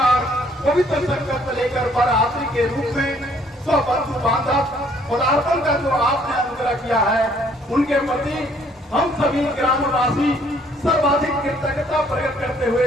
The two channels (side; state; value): both; normal; correlation 0.62